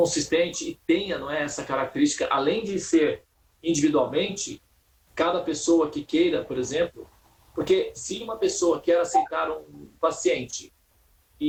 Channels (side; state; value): both; identical; correlation 1.00